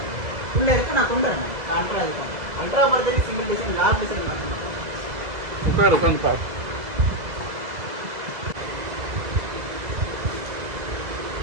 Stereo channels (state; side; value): late; left; 2.0 ms